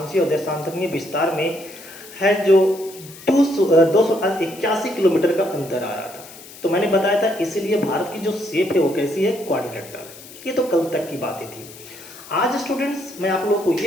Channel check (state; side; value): noise; left; hiss, 18 dB below the sound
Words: और देशांतरीय विस्तार में है जो 281 किलोमीटर का अंतर आ रहा था। तो मैंने बताया था इसीलिए भारत की जो शेप है वो कैसी है, क्वाड्रिलेटरल। ये तो कल तक की बातें थी। आज स्टूडेंट्स मैं आप लोगों को